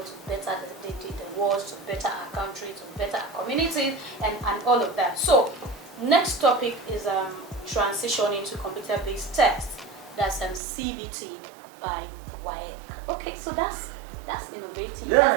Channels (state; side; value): drops out; left; at 10.6 s